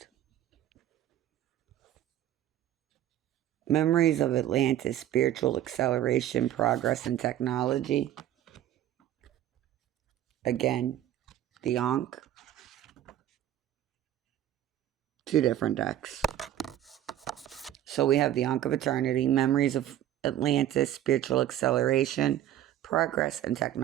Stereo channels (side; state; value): left; quieter; 12.4 dB